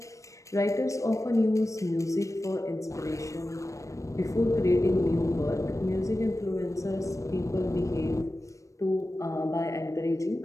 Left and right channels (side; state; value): right; late; 0.15 ms